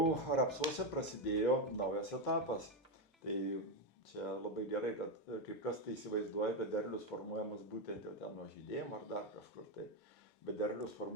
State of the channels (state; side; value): normal; both; correlation 0.08